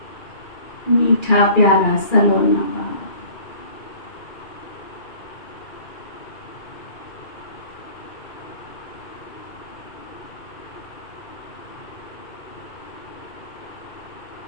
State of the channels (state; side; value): late; right; 2.4 ms